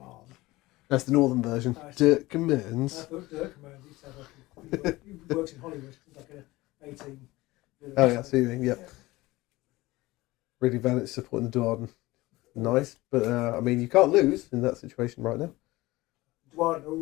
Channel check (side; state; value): right; quieter; 19.6 dB